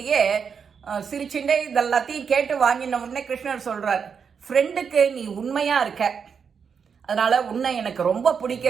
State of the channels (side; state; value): left; quieter; 6.4 dB